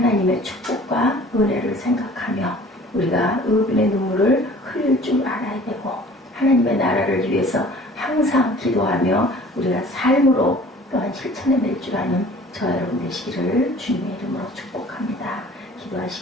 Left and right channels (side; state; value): both; normal; correlation 0.48